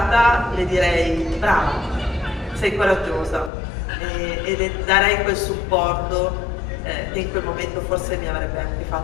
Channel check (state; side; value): drops out; right; at 3.5 s